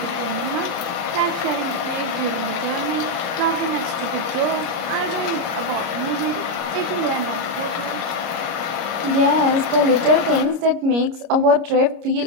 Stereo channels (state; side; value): late; left; 29 ms